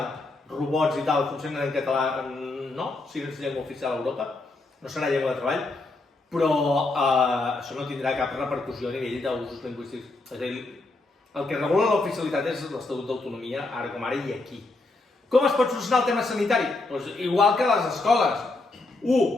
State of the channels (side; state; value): right; quieter; 3.2 dB